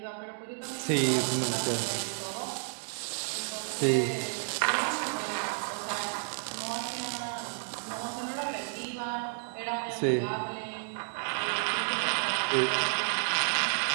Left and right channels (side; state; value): left; silent; 56 dB below the other